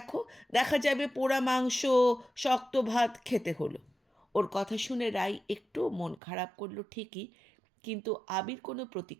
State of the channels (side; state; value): left; drops out; at 6.2 s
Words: দেখা যাবে পোড়া মাংস, শক্ত ভাত খেতে হলো। ওর কথা শুনে রাই একটু মন খারাপ করলো ঠিকই, কিন্তু আবির কোনো